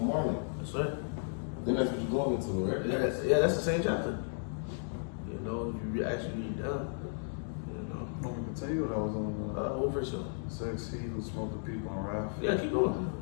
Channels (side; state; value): right; silent; digital silence